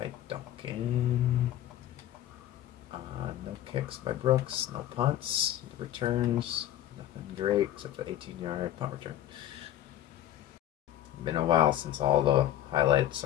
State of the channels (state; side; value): quieter; right; 12.3 dB